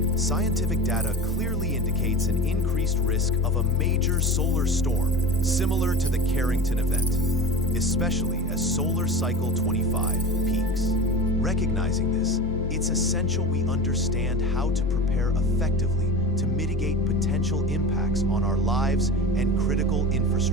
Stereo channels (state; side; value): normal; both; correlation 0.31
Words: Scientific data clearly indicates an increased risk of a major solar storm similar to the Carrington Event, especially as Solar Cycle 25 peaks. Recognizing this, it's essential we understand how to prepare effectively to mitigate potential impacts on our lives and critical